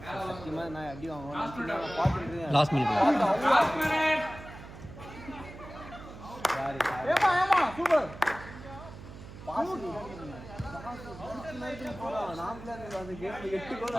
சத்தியமாக நான் அடி வாங்குவேன் பார்த்துட்டு லாஸ்ட் மினிட் சூப்பர்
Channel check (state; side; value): noise; right; hum, 14 dB below the sound